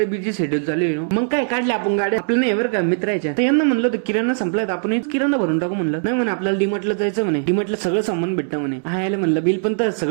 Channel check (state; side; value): silent; left; 66 dB below the other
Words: बिझी शेड्यूल चालू आहे. मग काय काढले आपण गाड्या आपलं नाही बरं का मित्राच्या. तर यांना म्हणलं होतं किराणा संपलाय, आपण किराणा भरून टाकू म्हणलं. नाही म्हणे आपल्याला डीमार्टला जायचं म्हणे, डीमार्टला सगळं सामान भेटतं म्हणे. यायला म्हणलं बिल पण तर